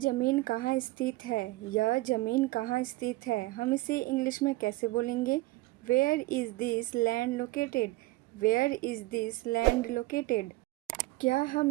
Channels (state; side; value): quieter; left; 19.9 dB